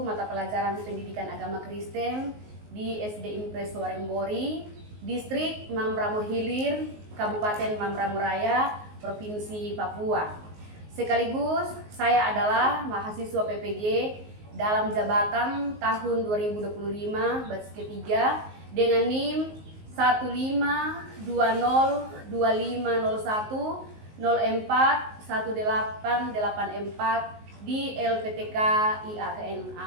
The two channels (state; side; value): late; left; 19 ms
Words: pelajaran pendidikan agama Kristen di SD Impres Warengbori, Distrik Mambramo Hilir, Kabupaten Mambramo Raya, Provinsi Papua. Sekaligus saya adalah mahasiswa PPG dalam jabatan tahun 2025 batch ketiga dengan NIM 15201041884 di LPTK IAKN